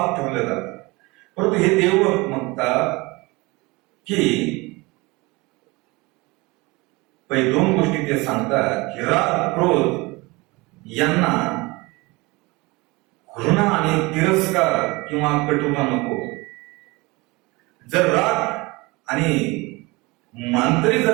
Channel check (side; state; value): left; quieter; 24.0 dB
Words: ठेवलं जातं. परंतु हे देवभक्त म्हणतात की पहिले दोन गोष्टी ते सांगतात की राग, क्रोध यांना घृणा आणि तिरस्कार किंवा कटुता नको. जर राग आणि मांतरी